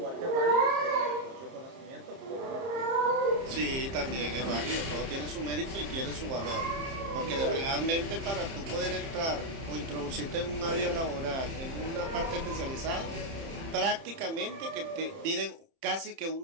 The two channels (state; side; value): late; left; 30 ms